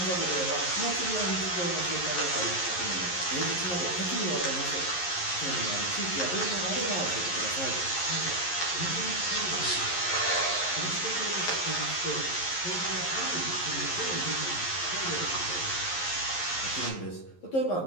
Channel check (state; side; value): late; right; 11 ms